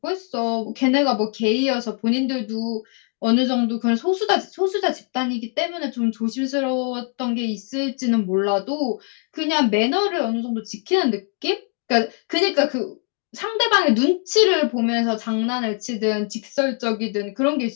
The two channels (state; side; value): quieter; right; 39.4 dB